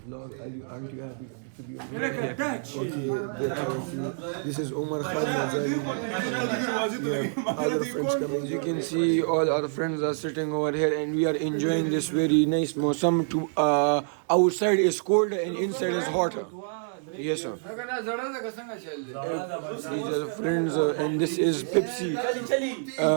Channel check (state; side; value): silent; left; digital silence